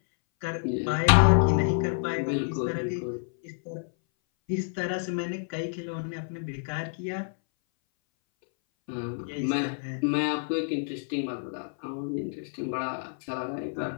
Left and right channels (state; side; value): silent; right; 59 dB below the other